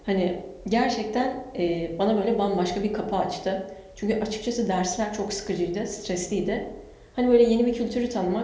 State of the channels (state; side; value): identical; both; correlation 1.00